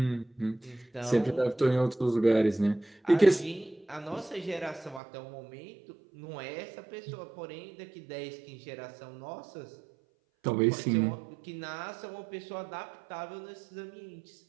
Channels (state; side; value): drops out; left; at 5.0 s